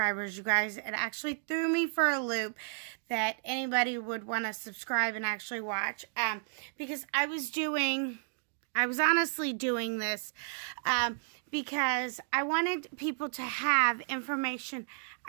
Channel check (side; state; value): left; silent; digital silence